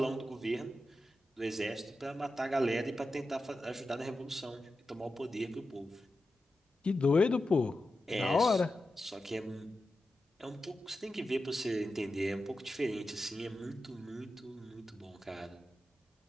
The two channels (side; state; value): both; normal; correlation 0.91